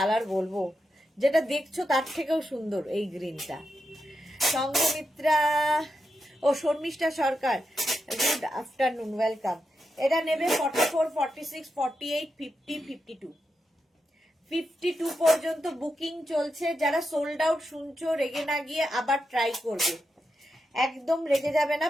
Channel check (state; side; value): normal; both; correlation 0.87